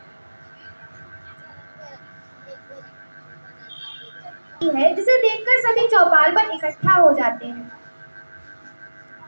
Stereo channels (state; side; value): inverted; both; correlation -1.00